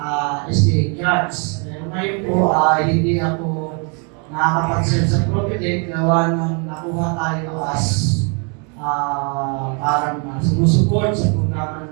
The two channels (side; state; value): left; quieter; 36.7 dB